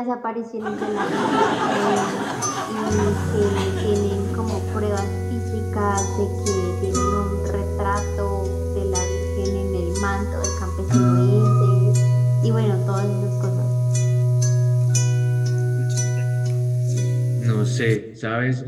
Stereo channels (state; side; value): identical; both; correlation 1.00